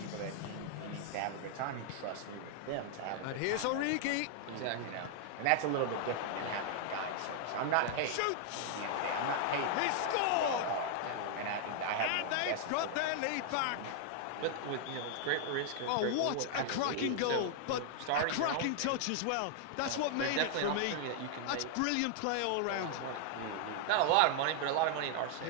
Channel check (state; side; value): different; both; correlation 0.00